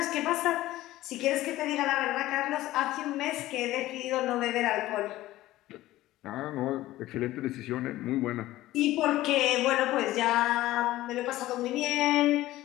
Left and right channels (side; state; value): right; quieter; 16.1 dB